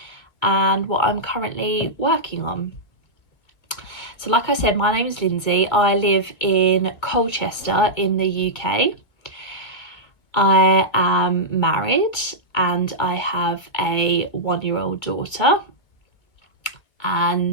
and what I'm currently working on. So like I said, my name is Lindsay. I live in Colchester in the UK. I am married and I have a 1-year-old daughter,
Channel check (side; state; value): right; late; 2.2 ms